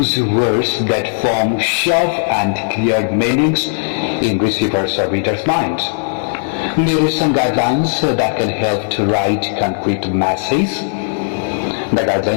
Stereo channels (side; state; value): right; silent; 66 dB below the other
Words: words that form sharp and clear meanings in receiver's or reader's mind. There are some guidelines that can help to write concrete messages. The